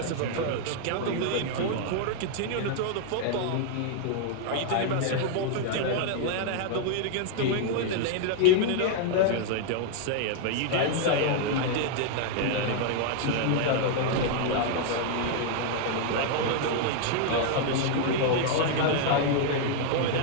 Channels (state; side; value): different; both; correlation 0.00